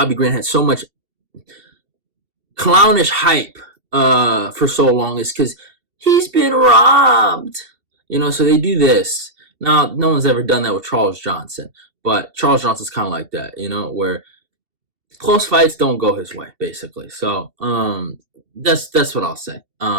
Green had so much clownish hype for so long, is because he's been robbed, so they do this. Now, no one's ever done that with Charles Johnson, but Charles Johnson's kind of like that, where close fights don't go his way, basically. So that's what I'll say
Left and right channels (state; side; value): late; left; 2.7 ms